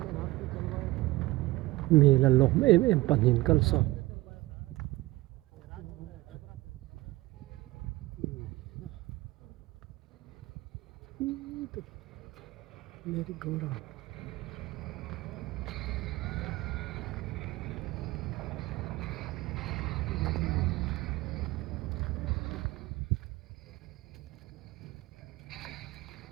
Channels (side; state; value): left; quieter; 19.6 dB